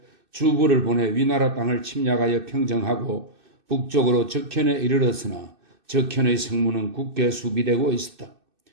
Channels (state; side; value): late; left; 2.6 ms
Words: 주부를 보내 위나라 땅을 침략하여 평정하고 북쪽으로 적현에 이르렀으나 적현의 성문은 굳게 수비되고 있었다.